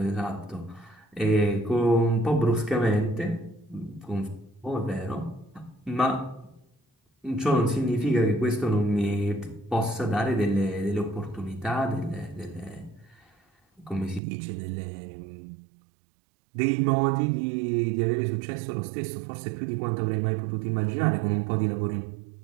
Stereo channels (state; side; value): drops out; left; at 14.2 s